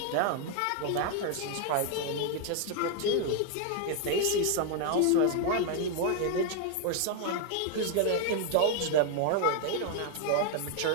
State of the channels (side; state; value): both; different; correlation 0.01